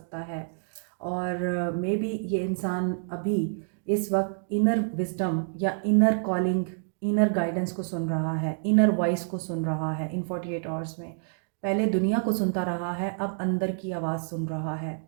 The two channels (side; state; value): left; silent; digital silence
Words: है, और मे बी ये इंसान अभी इस वक्त इनर विजडम या इनर कॉलिंग, इनर गाइडेंस को सुन रहा है, इनर वॉइस को सुन रहा है इन 48 आवर्स में। पहले दुनिया को सुनता रहा है, अब अंदर की आवाज़ सुन रहा है,